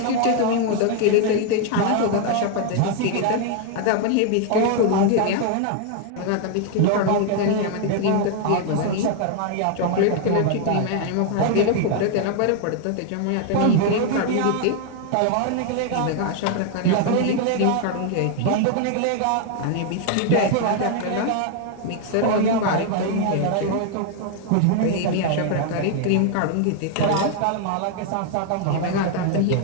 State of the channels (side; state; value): both; different; correlation 0.00